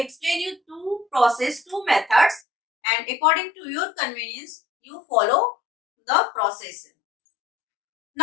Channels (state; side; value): drops out; right; at 2.4 s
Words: you two methods, and according to your convenience, you follow the process.